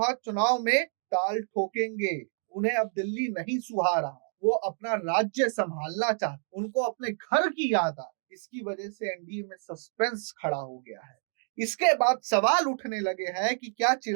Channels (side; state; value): left; silent; 55 dB below the other